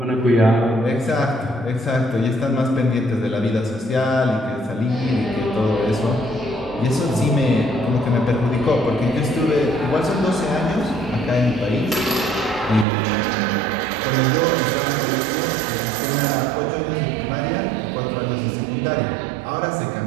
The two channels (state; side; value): drops out; left; at 12.9 s